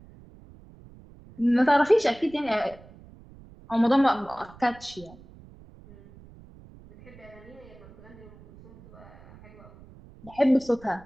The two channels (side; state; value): right; noise; rumble, 22 dB below the sound